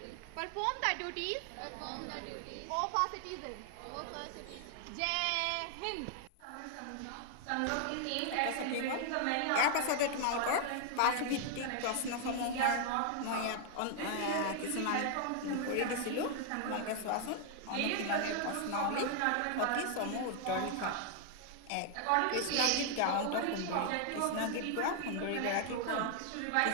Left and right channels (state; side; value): different; both; correlation 0.00